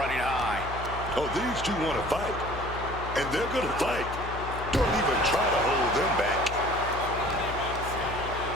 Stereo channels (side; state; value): left; noise; hum, 8 dB below the sound